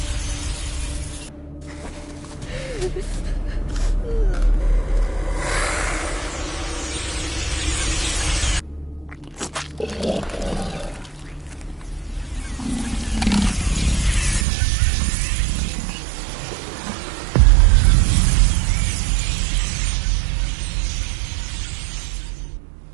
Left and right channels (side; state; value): left; drops out; at 14.5 s